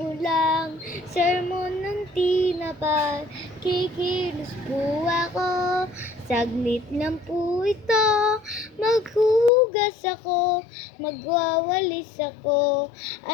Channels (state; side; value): drops out; right; at 9.5 s